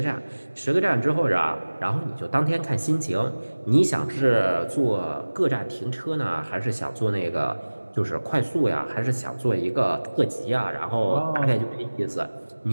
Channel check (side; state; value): both; inverted; correlation -1.00